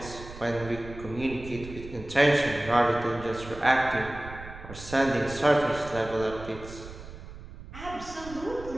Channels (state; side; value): noise; right; rumble, 14 dB below the sound